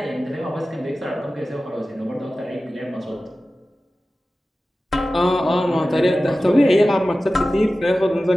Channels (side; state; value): both; normal; correlation 0.95